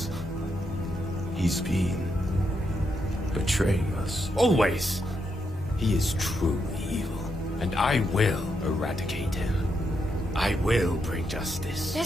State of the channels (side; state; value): both; normal; correlation 0.81